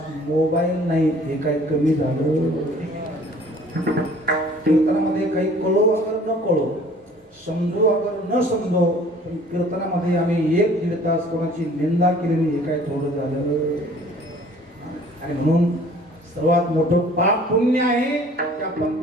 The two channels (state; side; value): normal; both; correlation 0.52